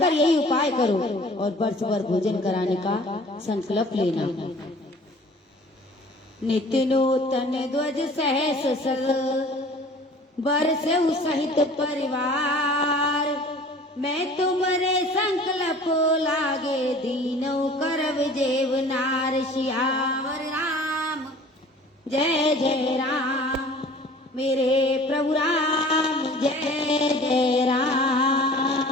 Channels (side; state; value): both; normal; correlation 0.47